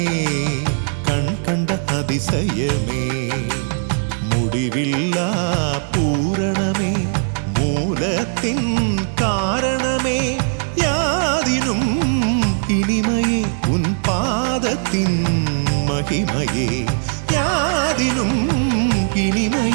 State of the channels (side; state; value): left; silent; 66 dB below the other